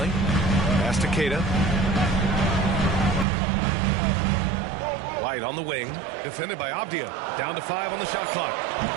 Pass to Keita. White on the wing, defended by Avdia. Down to 5 on the shot clock.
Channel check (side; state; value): left; drops out; at 3.2 s